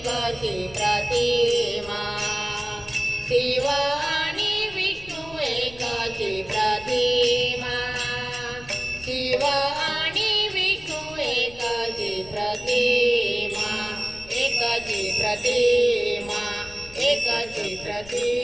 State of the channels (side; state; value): left; noise; rumble, 19 dB below the sound